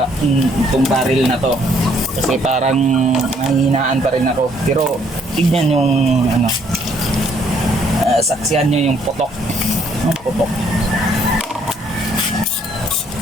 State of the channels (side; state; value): both; normal; correlation 0.66